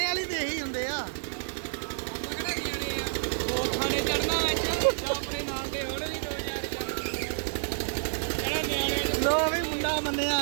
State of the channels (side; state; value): left; silent; digital silence